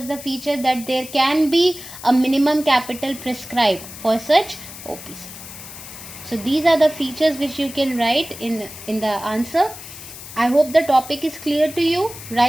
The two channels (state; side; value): noise; left; hiss, 14 dB below the sound